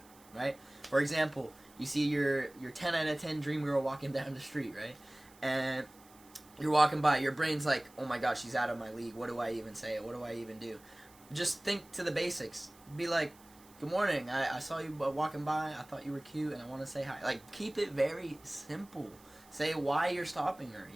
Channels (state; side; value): noise; right; hiss, 25 dB below the sound